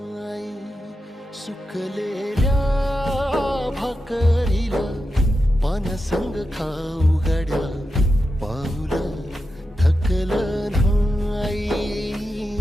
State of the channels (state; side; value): normal; both; correlation 0.89